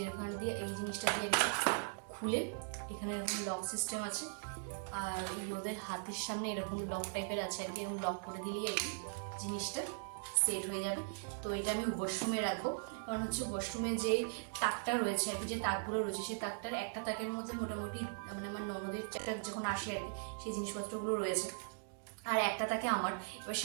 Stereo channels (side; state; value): left; silent; digital silence